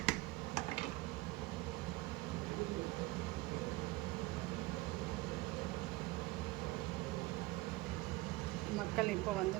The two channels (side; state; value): left; quieter; 20.2 dB